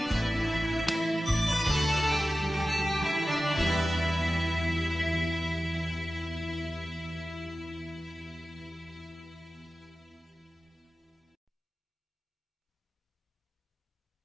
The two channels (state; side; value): normal; both; correlation 0.95